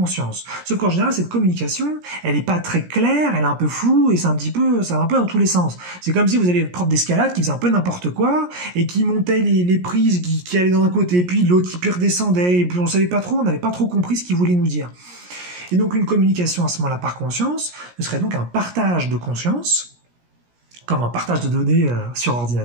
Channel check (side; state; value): left; late; 17 ms